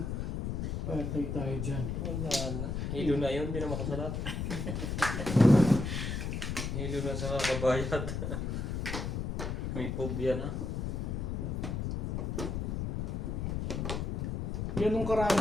Patay tayo dyan. Wala na. Hilo na yun, hindi na makasalat. Hilo na sa kabayad. May phobia na. Ganun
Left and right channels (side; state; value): left; noise; rumble, 2 dB below the sound